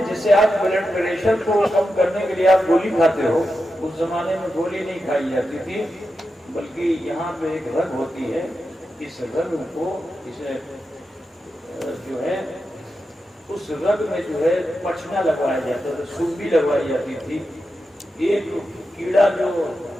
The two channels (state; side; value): normal; both; correlation 0.89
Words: جسے آپ بلڈ پریشر کو کم کرنے کے لیے آپ گولی کھاتے ہو، اس زمانے میں گولی نہیں کھائی جاتی تھی، بلکہ یہاں پہ ایک رگ ہوتی ہے، اس رگ کو اسے جو ہے اس رگ میں جو ہے پچنا لگوایا جاتا تھا، سوبی لگوائی جاتی تھی. ایک کیڑا جو